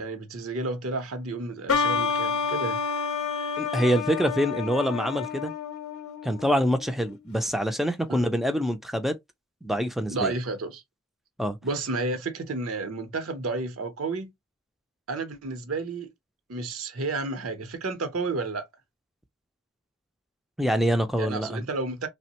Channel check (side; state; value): both; normal; correlation 0.55